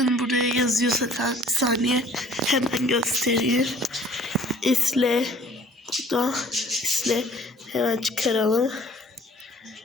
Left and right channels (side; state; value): both; normal; correlation 0.54